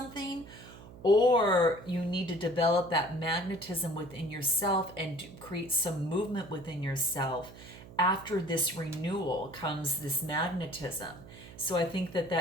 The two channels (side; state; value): right; noise; hum, 18 dB below the sound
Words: or you need to develop that magnetism within yourself and create some movement within yourself. After this renewal comes this magnetism. So I think